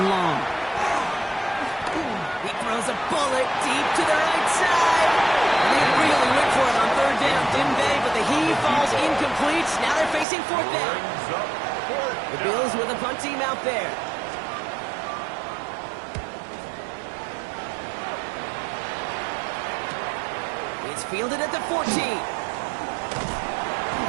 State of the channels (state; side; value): drops out; left; at 10.2 s